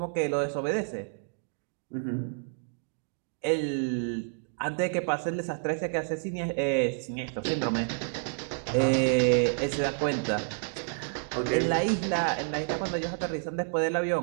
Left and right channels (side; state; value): left; silent; digital silence